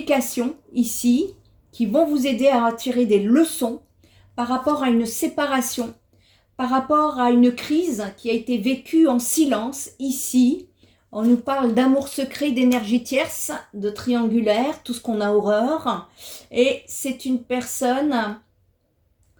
ici qui vont vous aider à tirer des leçons par rapport à une séparation, par rapport à une crise qui a été vécue en silence ici. On nous parle d'amour secret, d'énergie tierce, de triangulaire, tout ce qu'on a horreur. Et c'est une personne...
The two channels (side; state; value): both; identical; correlation 1.00